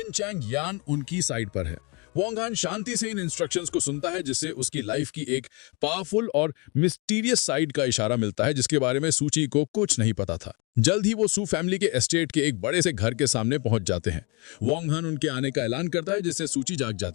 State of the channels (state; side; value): quieter; right; 30.5 dB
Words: चैंग यान उनकी साइड पर है। वोंग हान शांति से इन इंस्ट्रक्शंस को सुनता है, जिससे उसकी लाइफ की एक पावरफुल और मिस्टीरियस साइड का इशारा मिलता है जिसके बारे में सूची को कुछ नहीं पता था। जल्द ही वो सू फैमिली के एस्टेट के एक बड़े से घर के सामने पहुंच जाते हैं। वोंग हान उनके आने का ऐलान करता है, जिससे सूची जाग